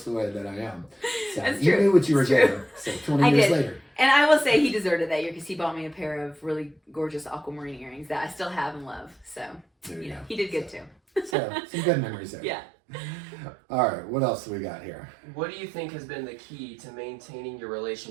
the way that I am. So That's you true. knew what you were doing. So 20 years later. And I will say he deserved it that year because he bought me a pair of really gorgeous aquamarine earrings that I still have and love. So, he did good too. So, some good memories there. Yeah. All right, what else do we got here? What do you think has been the key to maintaining your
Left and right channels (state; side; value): drops out; left; at 11.4 s